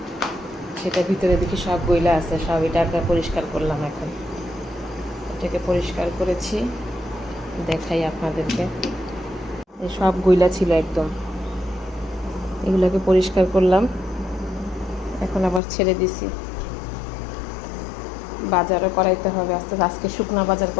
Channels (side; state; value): right; drops out; at 15.6 s